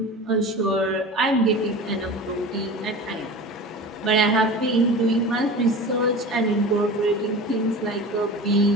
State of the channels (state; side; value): normal; both; correlation 0.34